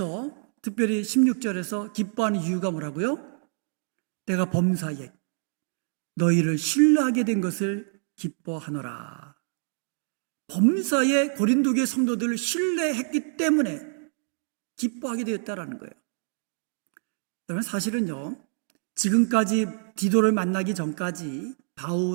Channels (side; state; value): left; silent; 60 dB below the other